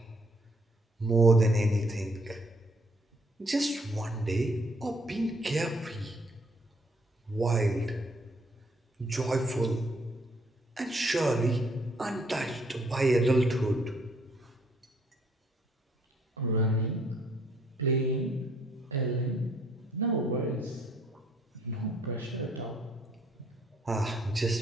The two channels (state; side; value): normal; both; correlation 0.65